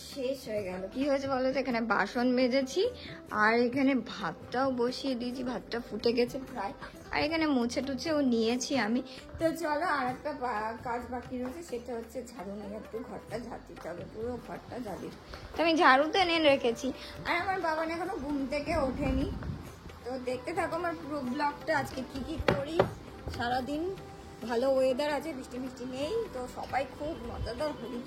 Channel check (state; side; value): identical; both; correlation 1.00